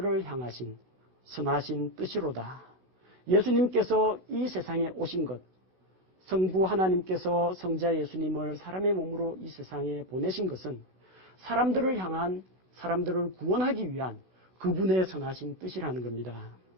향하신 선하신 뜻이로다. 예수님께서 이 세상에 오신 것, 성부 하나님께서 성자 예수님을 사람의 몸으로 이 세상에 보내신 것은 사람들을 향한, 사람들을 구원하기 위한 그분의 선하신 뜻이라는 겁니다.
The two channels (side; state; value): left; late; 14 ms